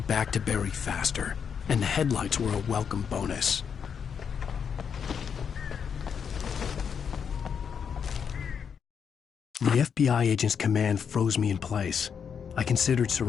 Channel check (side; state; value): right; quieter; 7.1 dB